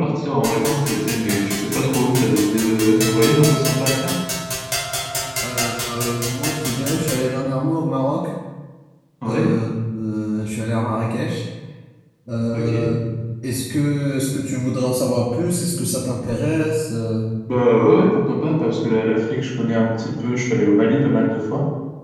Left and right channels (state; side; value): identical; both; correlation 1.00